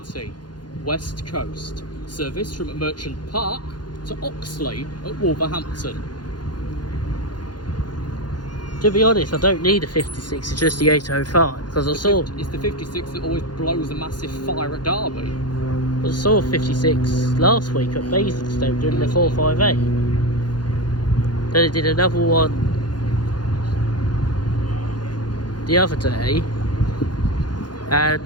West Coast. Service from Merchant Park to Oxley at Wolverhampton. To be honest, I don't need a 56, it's just the 805, because It's the 56 that always blows a massive fire at Derby. I saw 56 last week at Basingstoke doing the 458. Then I did another one the other day, and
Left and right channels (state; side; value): late; right; 0.70 ms